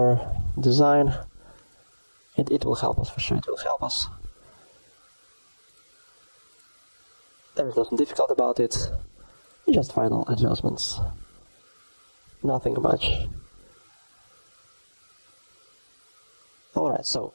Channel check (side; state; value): both; inverted; correlation -1.00